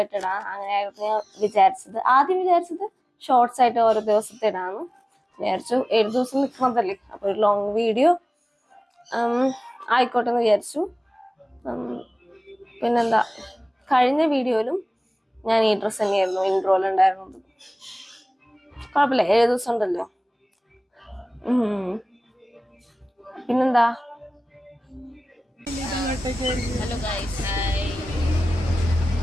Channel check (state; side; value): normal; both; correlation 0.98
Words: ഇടാം. അങ്ങനെയായിരുന്നു ഞാൻ വിചാരിച്ചത്. ആദ്യം വിചാരിച്ചത് ഷോർട്സ് ആയിട്ട് ഓരോ ദിവസത്തെ ഇടാമെന്ന് വിചാരിച്ചു. 7 ദിവസം നിൽക്കുന്നതല്ലേ, അപ്പോൾ ഒരു ലോങ് വീഡിയോ ആയിക്കോട്ടെ എന്ന് വിചാരിച്ചു. പിന്നെന്താ, കഴിഞ്ഞ വീഡിയോയിലും ഞാൻ ഈ ഡ്രസ്സ് തന്നെയായിരുന്നു ഇൻട്രോയിലുണ്ടായിരുന്നത്. കുഴപ്പമില്ല, 7 ദിവസം ഉണ്ടല്ലോ. പിന്നെന്താ, ഹലോ ഗൈസ്, ഹായ്.